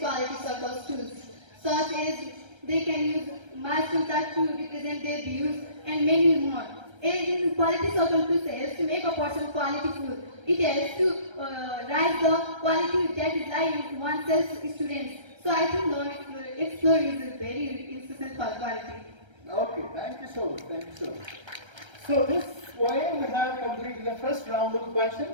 circles tools, such as they can use milestone chart to represent their views and many more. In quality circle tools helps to make a person quality full. It helps to rise the quality that is lying in oneself students. So I think learn, explore is a very insistent for quality. Okay, thank you so much. Thank you so much. So this way we have completed the first round of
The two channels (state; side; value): late; left; 1.3 ms